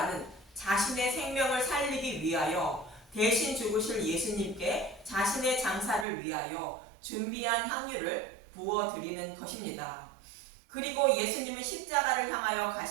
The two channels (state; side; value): drops out; left; at 6.1 s